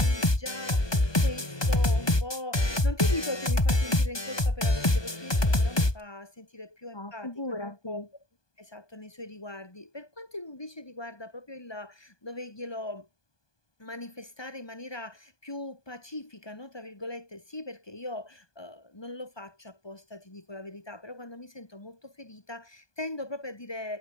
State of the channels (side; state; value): right; late; 1.2 ms